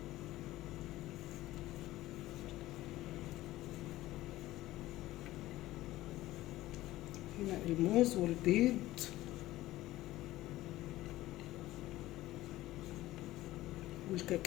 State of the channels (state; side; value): quieter; right; 16.4 dB